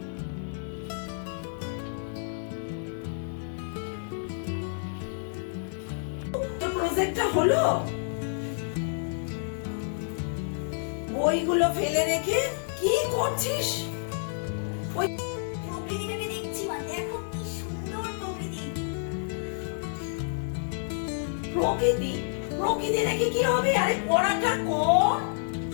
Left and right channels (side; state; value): right; silent; digital silence